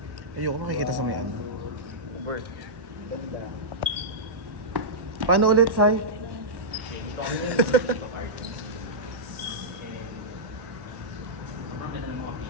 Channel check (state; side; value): late; left; 1.1 ms